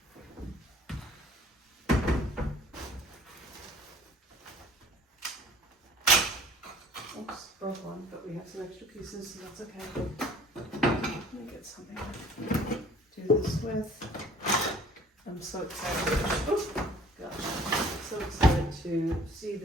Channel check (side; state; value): both; normal; correlation 0.52